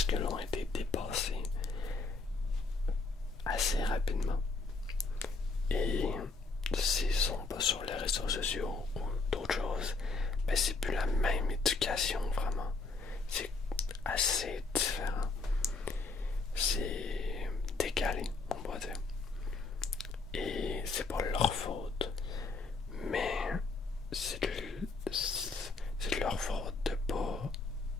que l'on a été dépassé assez rapidement. Et s'ils sont pas sur les réseaux sociaux ou d'autres choses, ben c'est plus la même éducation vraiment. C'est assez différent. C'est décalé, on va dire. Et c'est pas leur faute. Mais c'est de leur faute de pas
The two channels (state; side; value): quieter; right; 3.8 dB